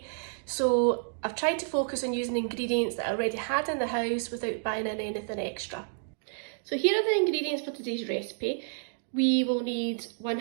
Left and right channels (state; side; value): silent; left; digital silence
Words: So I've tried to focus on using ingredients that I already had in the house without buying in anything extra. So here are the ingredients for today's recipe. We will need